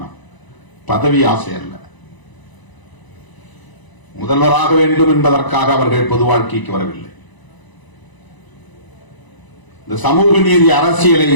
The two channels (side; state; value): right; late; 1.0 ms